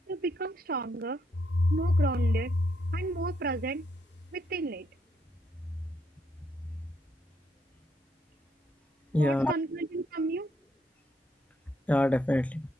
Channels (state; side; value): normal; both; correlation 0.75